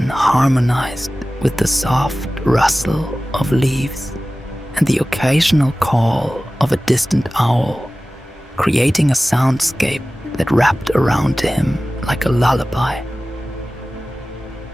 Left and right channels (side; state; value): both; normal; correlation 0.97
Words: harmonized with the soft rustle of leaves and the occasional call of a distant owl, creating a soundscape that wrapped around him like a lullaby.